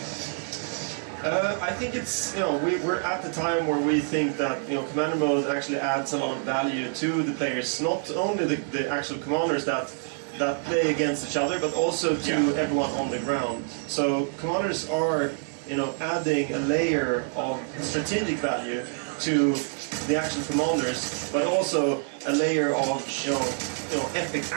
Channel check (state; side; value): silent; left; 60 dB below the other